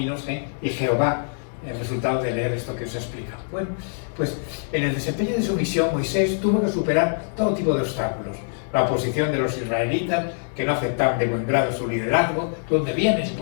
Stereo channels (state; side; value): silent; right; digital silence